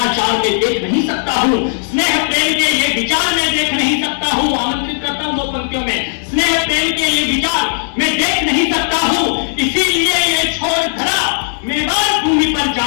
में देख नहीं सकता हूँ, स्नेह प्रेम के ये विचार में देख नहीं सकता हूँ। आमंत्रित करता हूँ 2 पंक्तियों में, स्नेह प्रेम के ये विचार मैं देख नहीं सकता हूँ, इसीलिए ये छोड़ धरा मेवाड़ भूमि पर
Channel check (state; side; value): silent; right; digital silence